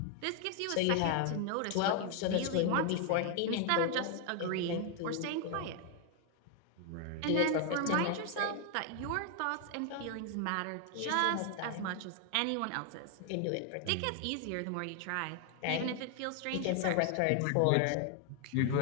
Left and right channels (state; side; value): different; both; correlation 0.00